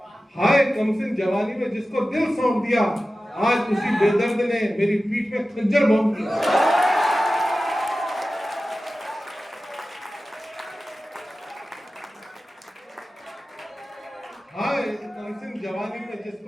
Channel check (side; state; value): both; normal; correlation 0.95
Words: हाय कमसिन जवानी में जिसको दिल सौंप दिया, आज उसी बेदर्द ने मेरी पीठ में खंजर भोंक दिया। हाय कमसिन जवानी में